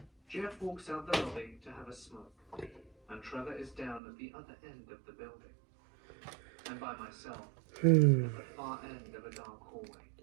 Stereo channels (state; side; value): drops out; left; at 4.0 s